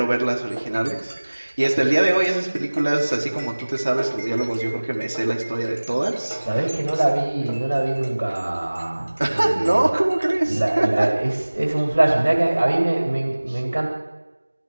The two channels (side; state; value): both; inverted; correlation -1.00